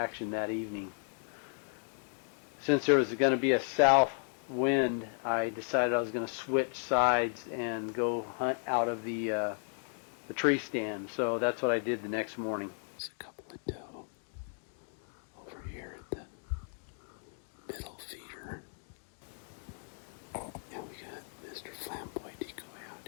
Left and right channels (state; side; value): silent; right; 55 dB below the other